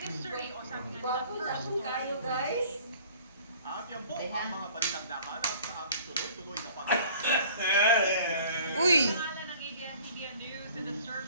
Gwapo na kung kayo guys. Yan po ang mga balitang nahanap sa aming tuloy-tuloy na Uy,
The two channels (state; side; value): inverted; both; correlation -0.50